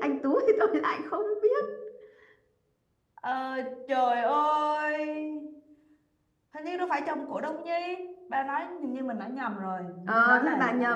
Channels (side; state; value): both; identical; correlation 1.00